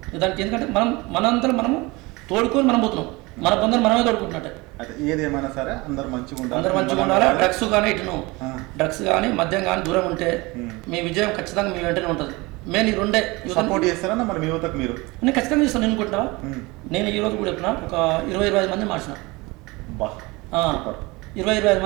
దానికి. ఎందుకంటే మనంతా మనము తోడుకొని మనం పోతున్నాం, మన బంధువులు మనమే తోడుకుంటున్నట్టే. ఏదేమైనా సరే అందరు మంచిగా ఉండాలి. డ్రగ్స్ కానీ మద్యం కానీ దూరం ఉంటే మీ విజయం ఖచ్చితంగా మీ వెంటనే ఉంటుంది. నేను ఈ రెండే సపోర్ట్ చేస్తారా మరి మీ యువతకు? మీరు నేను ఖచ్చితంగా చేస్తాను. నేను అనుకుంటావా, నేను ఈ రోజు కూడా చెప్పిన ఒక 20-25 మంది మార్చిన, 20-25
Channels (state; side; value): quieter; left; 23.7 dB